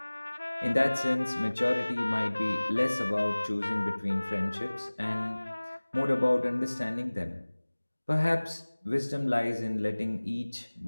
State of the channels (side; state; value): both; inverted; correlation -1.00